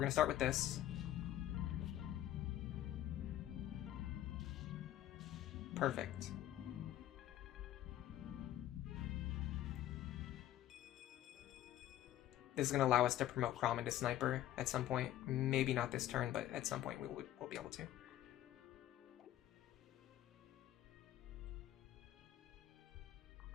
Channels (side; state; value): right; quieter; 13.0 dB